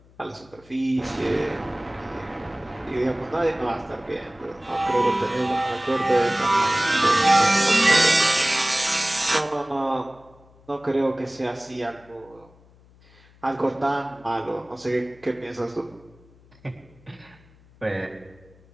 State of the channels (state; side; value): noise; left; hum, 27 dB below the sound